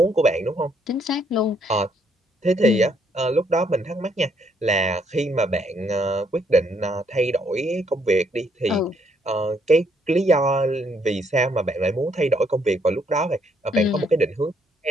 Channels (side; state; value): both; normal; correlation 0.70